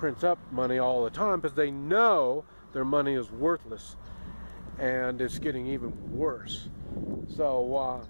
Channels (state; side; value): inverted; both; correlation -1.00